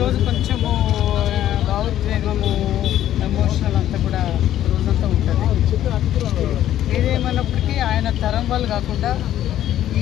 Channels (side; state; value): right; quieter; 12.1 dB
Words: కొంచెము భావోద్వేగము ఎమోషనల్ అంతా కూడా రోజంతా ఉంటుంది. ఏదేమన్నప్పటికీ ఆయన తరం వాళ్ళు కాకుండా